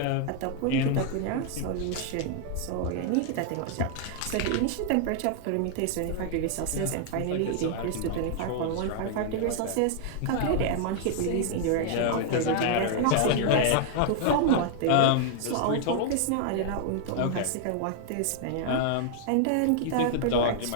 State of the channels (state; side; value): different; both; correlation -0.01